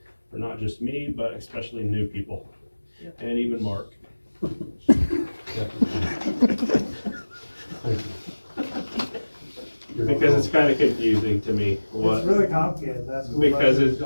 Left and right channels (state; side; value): inverted; both; correlation -1.00